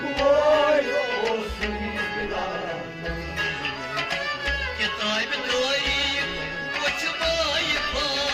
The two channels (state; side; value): identical; both; correlation 1.00